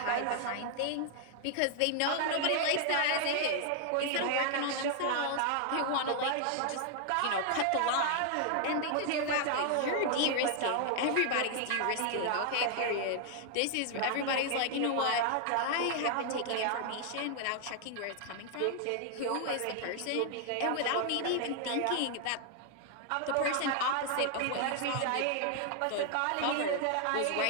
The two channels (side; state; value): both; different; correlation 0.00